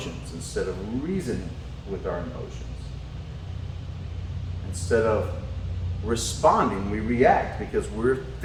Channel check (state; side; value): identical; both; correlation 1.00